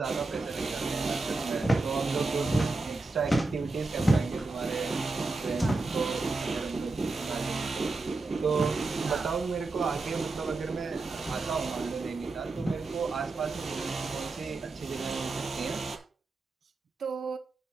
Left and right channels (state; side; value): quieter; left; 3.4 dB